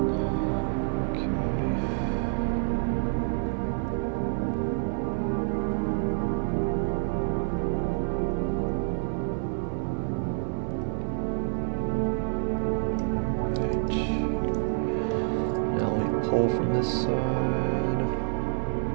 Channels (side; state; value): left; silent; digital silence